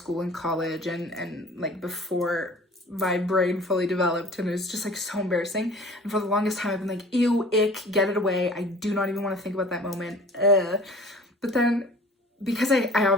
and college and like before my brain fully developed, and it was just like so embarrassing. And for the longest time I've been like, ew, ick, get it away. I do not even want to think about that moment. But then because I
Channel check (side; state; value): both; normal; correlation 0.46